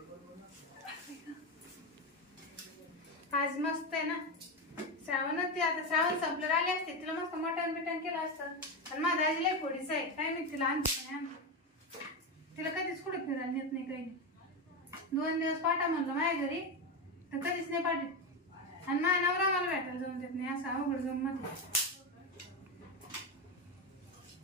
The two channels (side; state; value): both; normal; correlation 0.13